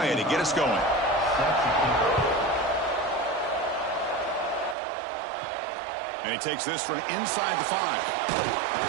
to get us going. And he takes this from inside the 5.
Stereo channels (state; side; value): drops out; left; at 4.8 s